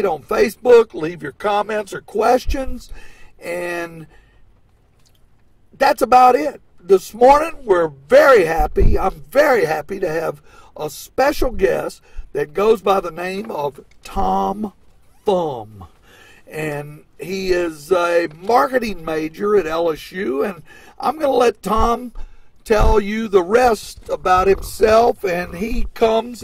on Facebook. Leave your comments or questions, and that's about it. This morning, we're very happy. I'm very happy to have a special guest that goes by the name of Tom Thumb. And he is a marketing major at LSU, and I'm going to let Tom tell you the rest about himself. And he comes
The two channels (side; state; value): both; identical; correlation 1.00